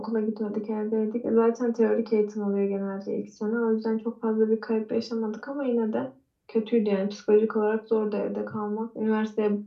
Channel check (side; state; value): both; identical; correlation 1.00